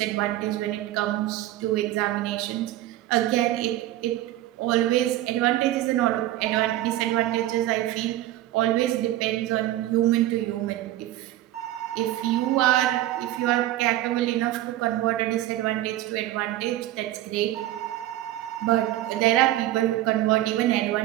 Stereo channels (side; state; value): left; quieter; 14.8 dB